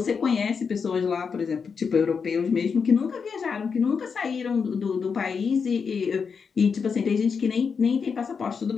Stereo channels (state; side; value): quieter; right; 5.8 dB